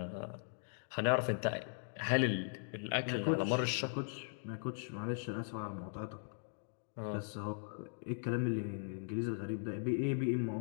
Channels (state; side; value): silent; right; digital silence